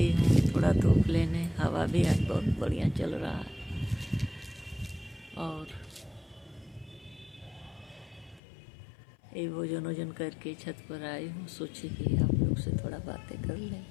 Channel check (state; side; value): drops out; right; at 8.4 s